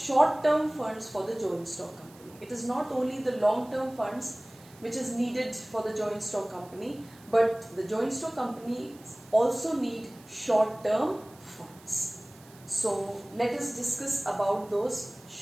funds for the joint stock company. It is not only the long-term funds which is needed for the joint stock company, but the joint stock company also need short-term funds. So let us discuss about those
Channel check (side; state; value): right; noise; hiss, 24 dB below the sound